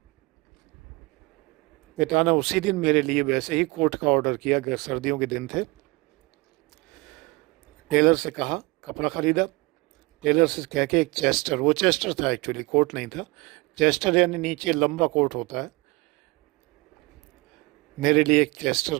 पिता ने उसी दिन मेरे लिए वैसे ही कोट का ऑर्डर किया, सर्दियों के दिन थे। टेलर से कहा, कपड़ा ख़रीदा। टेलर से कह के एक चेस्टर, वो चेस्टर था एक्चुअली, कोट नहीं था, चेस्टर यानी नीचे लंबा कोट होता है, मेरे लिए एक चेस्टर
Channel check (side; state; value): left; quieter; 24.5 dB